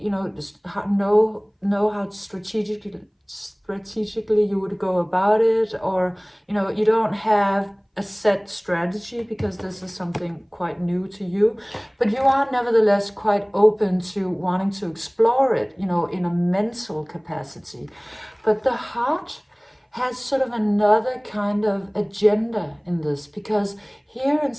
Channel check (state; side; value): identical; both; correlation 1.00